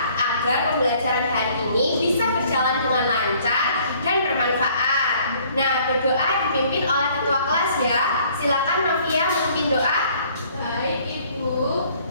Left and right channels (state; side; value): inverted; both; correlation -0.59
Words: agar pembelajaran hari ini bisa berjalan dengan lancar dan bermanfaat. Nah, berdoa dipimpin oleh ketua kelas ya. Silakan Novia memimpin doa. Baik Ibu,